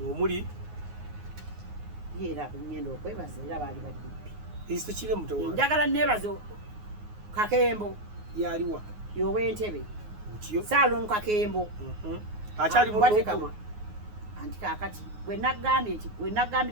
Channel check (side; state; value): left; late; 9.5 ms